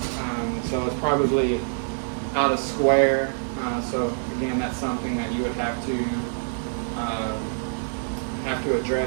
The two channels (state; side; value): silent; left; digital silence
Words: So it's probably out of square. So again, that's something that you would have to